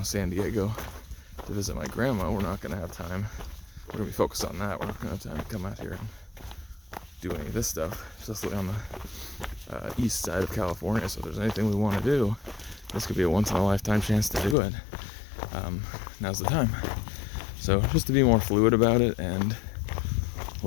San Diego to visit my grandma, we're not going to have time. We're going to be focused on that. We're not going to have time to come out here and do any of this stuff, especially on the east side of California. So if there's anything we want to do, this could be a once-in-a-lifetime chance to do it. Now's the time. So just to be more fluid about it and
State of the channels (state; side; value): drops out; right; at 14.6 s